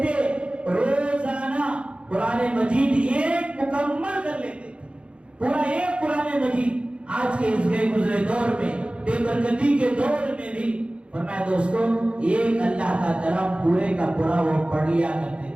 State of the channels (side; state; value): left; late; 0.058 ms